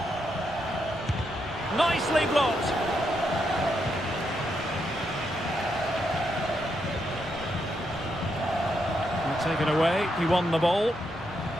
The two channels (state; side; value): normal; both; correlation 0.80